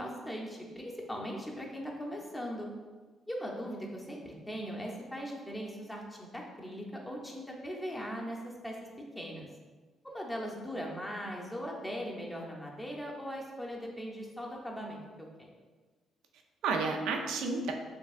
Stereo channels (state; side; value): normal; both; correlation 0.74